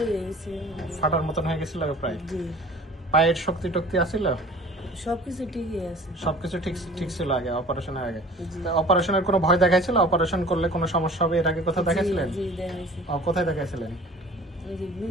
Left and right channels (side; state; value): both; normal; correlation 0.45